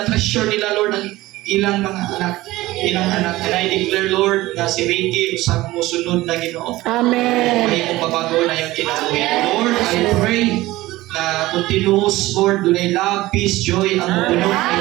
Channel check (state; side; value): quieter; left; 18.0 dB